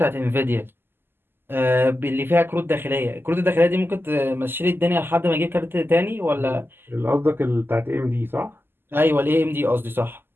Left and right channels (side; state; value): left; late; 0.10 ms